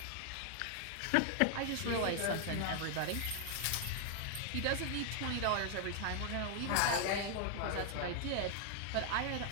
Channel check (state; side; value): different; both; correlation 0.00